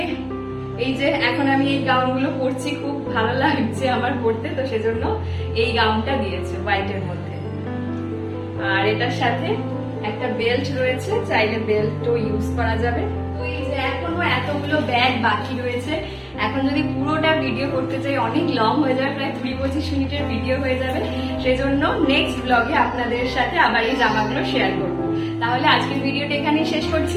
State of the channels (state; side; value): identical; both; correlation 1.00